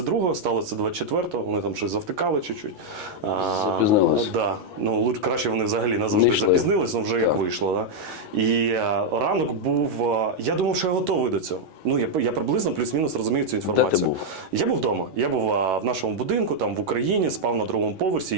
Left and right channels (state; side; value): late; left; 11 ms